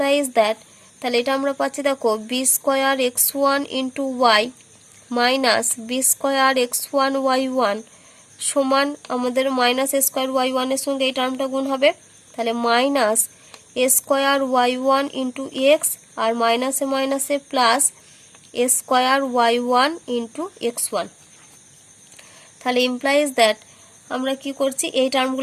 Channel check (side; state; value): both; identical; correlation 1.00